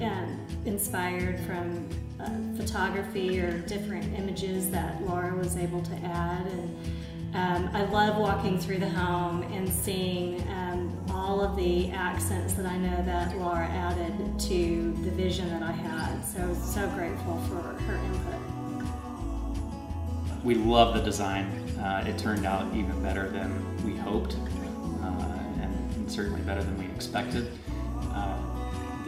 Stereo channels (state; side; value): identical; both; correlation 1.00